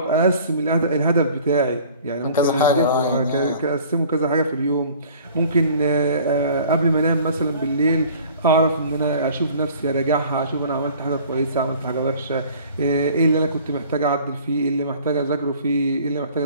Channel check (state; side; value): inverted; both; correlation -0.49